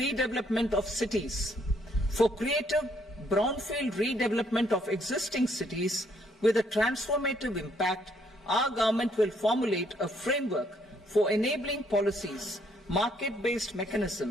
of cities. For creative brownfield redevelopment of existing cities with a transformative impact, our government will formulate a framework for enabling policies, market-based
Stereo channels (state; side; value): normal; both; correlation 0.68